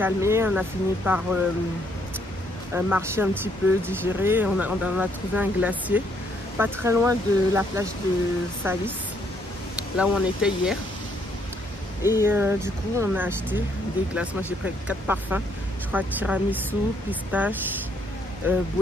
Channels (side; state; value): both; normal; correlation 0.69